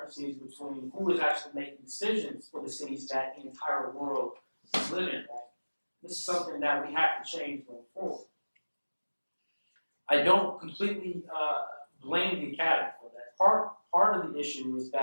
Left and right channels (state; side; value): inverted; both; correlation -1.00